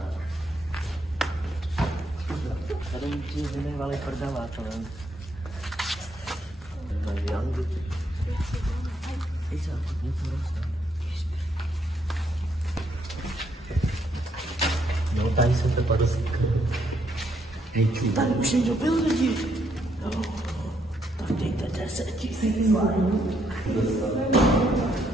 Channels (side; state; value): both; normal; correlation 0.74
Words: Tady ti vynechvali prdela, to nevím. No, tady jsem to padl. Tady už někdo byl lidi. No, tak dejte 10 000.